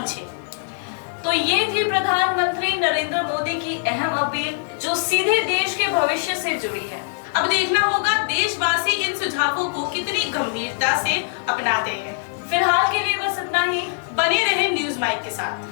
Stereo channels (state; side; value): silent; right; digital silence